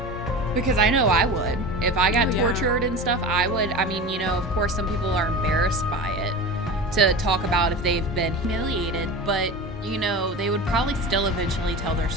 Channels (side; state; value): both; normal; correlation 0.30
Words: Because I know I would. If I got tortured and stuff, I would. I mean, you know, of course, some people are embarrassed by it to talk about if they've been humiliated, but, you know, they would probably still eventually tell their